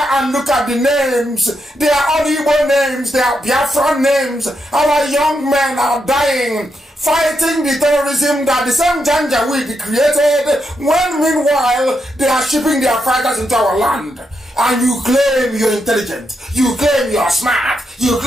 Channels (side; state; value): both; normal; correlation 0.83